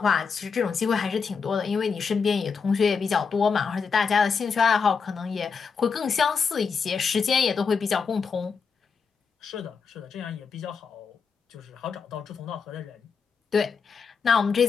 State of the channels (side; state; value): right; quieter; 5.7 dB